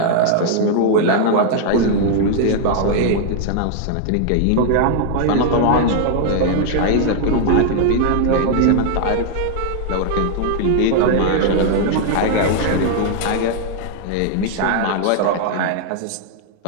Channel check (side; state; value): both; different; correlation 0.00